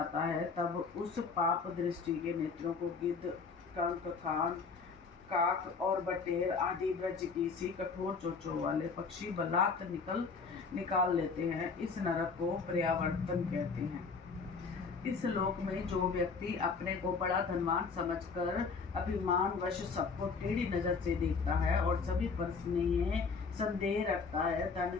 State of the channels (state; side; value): quieter; right; 4.9 dB